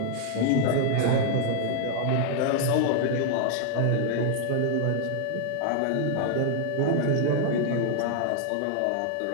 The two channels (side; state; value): both; different; correlation 0.00